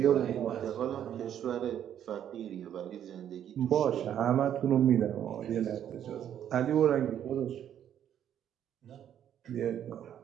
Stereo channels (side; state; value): left; quieter; 10.0 dB